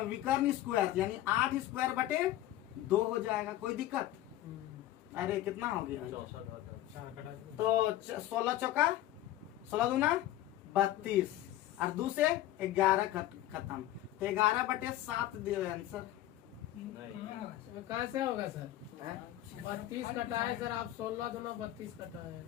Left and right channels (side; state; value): right; quieter; 14.0 dB